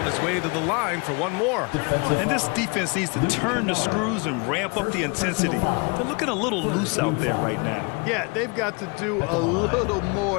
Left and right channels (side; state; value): right; quieter; 30.8 dB